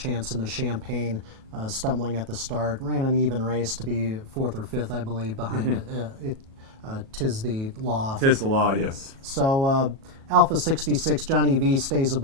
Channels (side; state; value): left; late; 37 ms